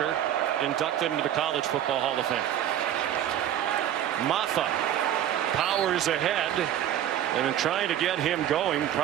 inducted into the College Football Hall of Fame. Maffa powers ahead, and in trying to get him going,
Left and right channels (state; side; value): quieter; left; 11.1 dB